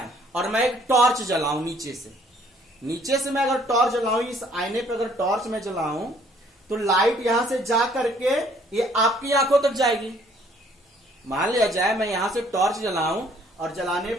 और मैं एक टॉर्च जलाऊं नीचे से मैं अगर टॉर्च जलाऊं, इस आईने पे अगर टॉर्च में जलाऊं, तो लाइट यहां से जा करके ये आपकी आंखों तक जाएगी। मान लिया जाए मैं यहां से टॉर्च जलाऊं और जलाने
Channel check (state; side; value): normal; both; correlation 0.61